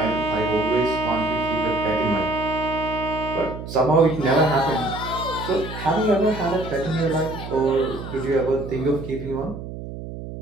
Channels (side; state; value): right; noise; hum, 10 dB below the sound